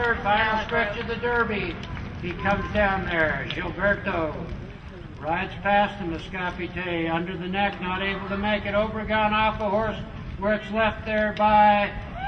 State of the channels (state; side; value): identical; both; correlation 1.00